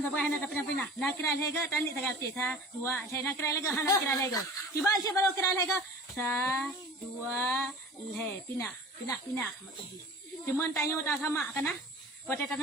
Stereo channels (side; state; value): both; normal; correlation 0.40